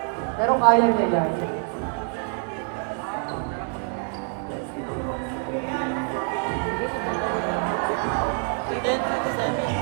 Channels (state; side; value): quieter; left; 39.0 dB